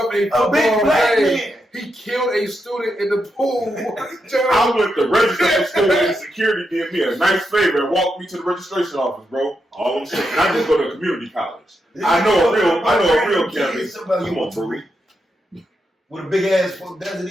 a big black man. He killed a student in the pool. I went to register for school and security did me a nice favor and walked me to the registration office, bro. All I'm saying. And I just go to community college. I know a real campus. Somebody you want to read. With a big ass Desert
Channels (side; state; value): both; normal; correlation 0.84